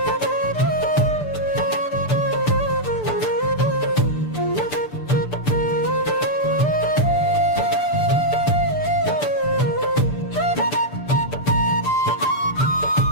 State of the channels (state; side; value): late; right; 6.8 ms